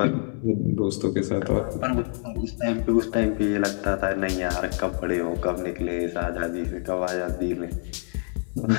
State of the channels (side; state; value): right; silent; 61 dB below the other